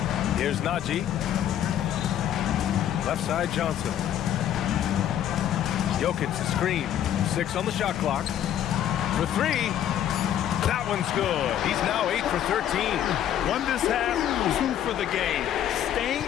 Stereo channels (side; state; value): right; quieter; 10.7 dB